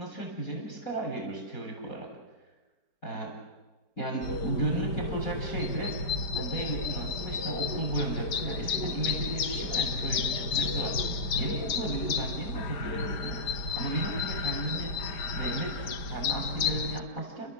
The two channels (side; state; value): right; late; 4.9 ms